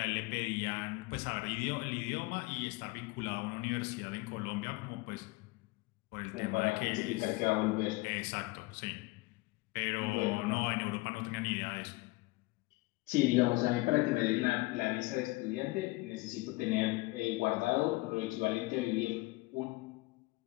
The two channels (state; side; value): quieter; right; 22.7 dB